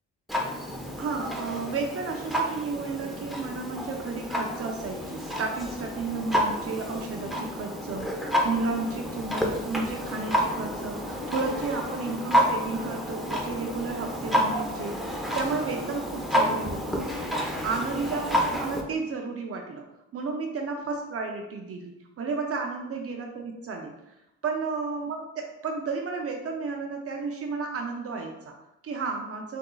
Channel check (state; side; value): normal; both; correlation 0.34